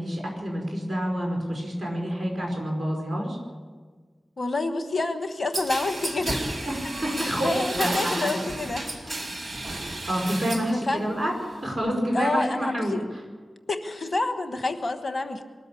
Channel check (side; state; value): both; normal; correlation 0.93